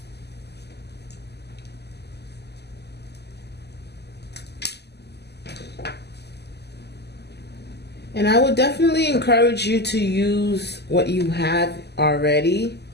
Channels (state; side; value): late; right; 0.49 ms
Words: And I would definitely encourage you to use what you have already.